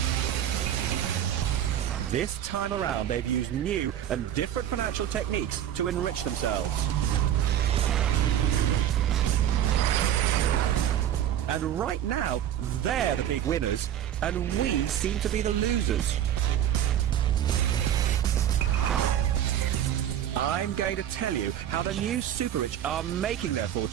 This time around, they've used new and different financial techniques to enrich themselves. And right now, they're the big winners, and we seem to be the losers. I'm going to tell you how the new super rich are making their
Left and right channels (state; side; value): quieter; left; 10.7 dB